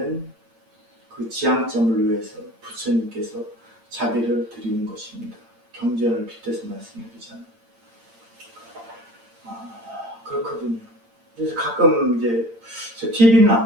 그 지향점을 위해서 부처님께서 자비를 드리는 것입니다. 경전을 빗대서 말씀드리잖아요. 그렇거든요. 그래서 가끔 이제 저 TV는 안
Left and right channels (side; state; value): left; late; 8.8 ms